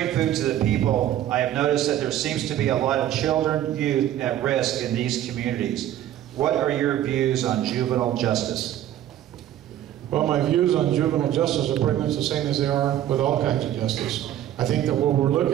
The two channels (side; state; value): left; quieter; 12.1 dB